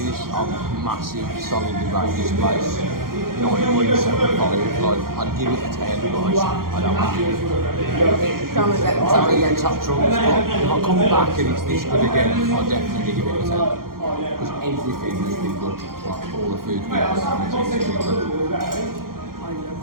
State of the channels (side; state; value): left; late; 0.92 ms